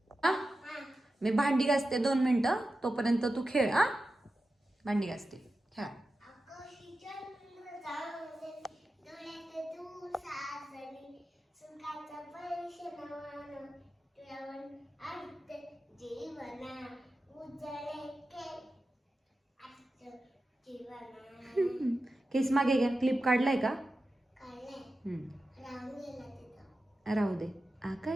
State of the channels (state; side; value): normal; both; correlation 0.92